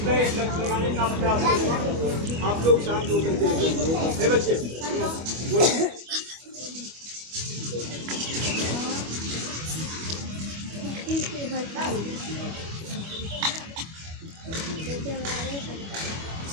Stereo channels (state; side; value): late; left; 25 ms